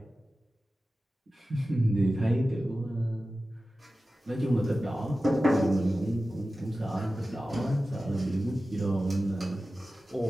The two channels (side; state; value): both; normal; correlation 0.95